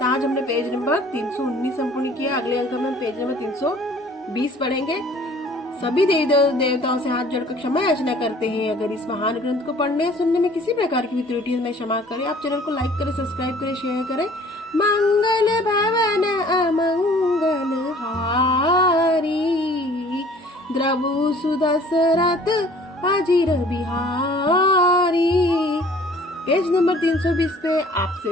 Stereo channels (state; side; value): normal; both; correlation 0.52